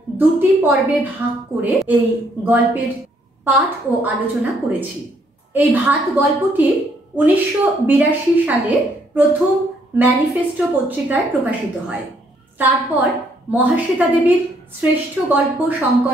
দুটি পর্বে ভাগ করে এই গল্পের পাঠ ও আলোচনা করেছি। এই ভাত গল্পটি 1982 সালে প্রথম ম্যানিফেস্টো পত্রিকায় প্রকাশিত হয়। তারপর মহাশ্বেতা দেবীর শ্রেষ্ঠ গল্প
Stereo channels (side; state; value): both; normal; correlation 0.69